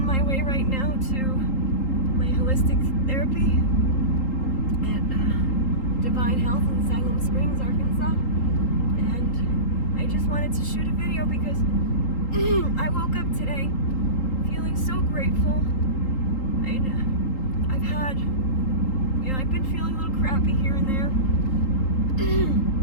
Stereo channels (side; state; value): right; late; 3.8 ms